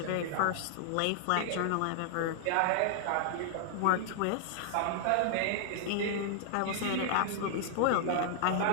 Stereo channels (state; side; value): different; both; correlation -0.01